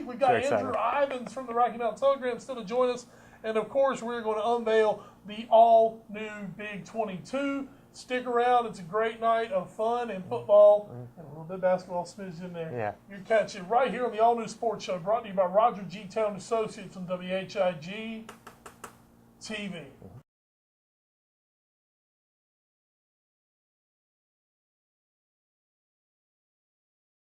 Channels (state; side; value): identical; both; correlation 1.00